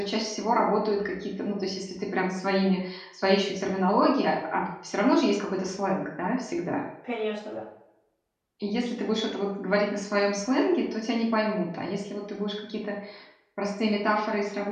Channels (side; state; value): both; identical; correlation 1.00